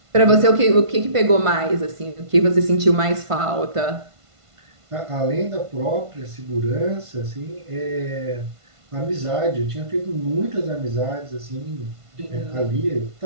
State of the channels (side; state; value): left; late; 1.5 ms